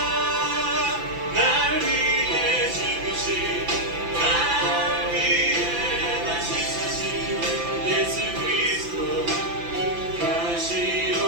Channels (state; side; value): late; left; 5.9 ms